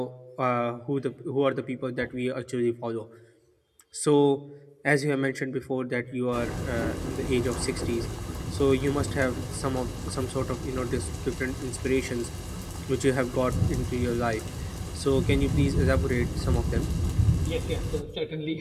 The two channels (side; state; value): both; identical; correlation 1.00